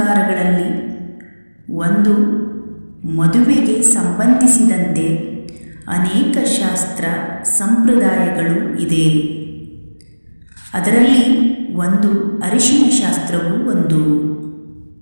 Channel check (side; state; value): both; inverted; correlation -1.00